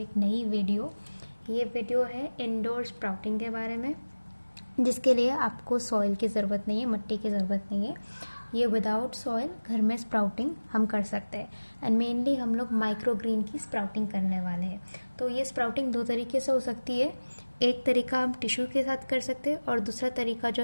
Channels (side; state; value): both; inverted; correlation -1.00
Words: नई वीडियो। ये वीडियो है इंडोर स्प्राउटिंग के बारे में, जिसके लिए आपको सॉइल की ज़रूरत नहीं है, मिट्टी की ज़रूरत नहीं है। ये विदाउट सॉइल घर में स्प्राउटिंग हम कर सकते हैं। एंड मेनली हम लोग माइक्रो ग्रीन की स्प्राउटिंग करने वाले हैं। तो ये स्प्राउटिंग दो तरीके से हो सकती है। एक तरीका हम टिश्यू के साथ कर सकते हैं और दूसरा तरीका जो